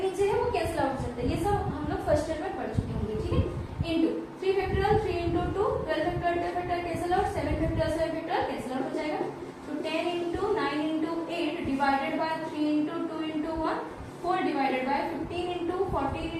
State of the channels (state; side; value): identical; both; correlation 1.00